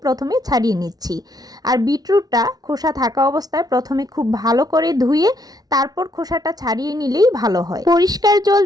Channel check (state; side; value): late; left; 0.19 ms